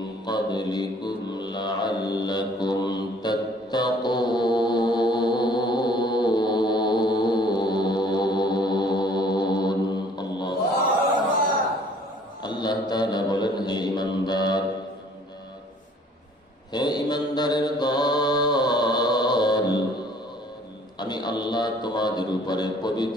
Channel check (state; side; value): normal; both; correlation 0.56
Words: قبلكم لعلكم تتقون আল্লাহ তাআলা বলেন, হে ঈমানদারের দল, আমি আল্লাহ তোমাদের উপরে